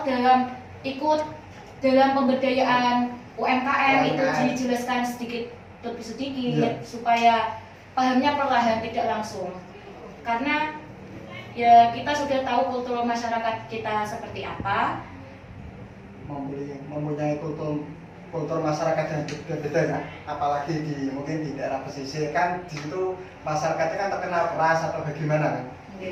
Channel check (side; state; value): both; identical; correlation 1.00